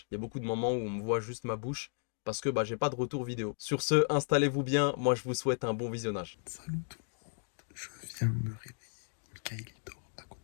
il y a beaucoup de moments où on me voit juste ma bouche. Parce que j'ai pas de retour vidéo. Sur ce, installez-vous bien. Moi, je vous souhaite un bon visionnage. Salut tout le monde, je viens de me réveiller. Mikael il dort à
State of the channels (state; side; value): silent; right; digital silence